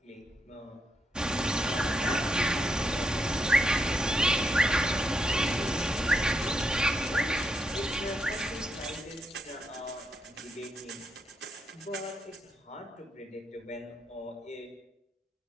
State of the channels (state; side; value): normal; both; correlation 0.80